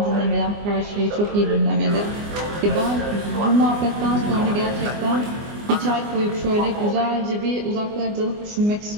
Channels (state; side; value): late; left; 24 ms